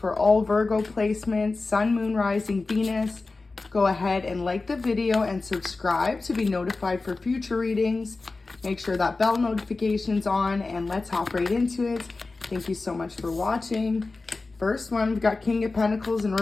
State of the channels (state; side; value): quieter; right; 3.6 dB